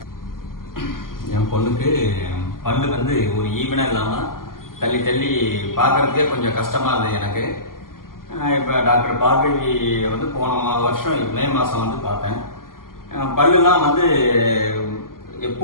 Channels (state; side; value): late; right; 0.91 ms